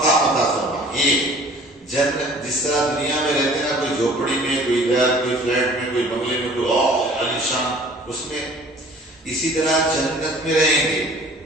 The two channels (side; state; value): both; normal; correlation 0.50